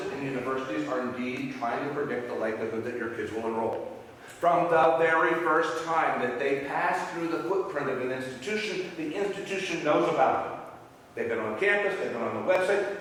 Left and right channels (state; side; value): identical; both; correlation 1.00